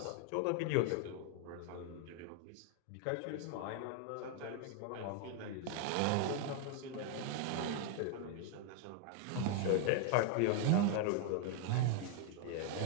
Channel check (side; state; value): both; different; correlation 0.00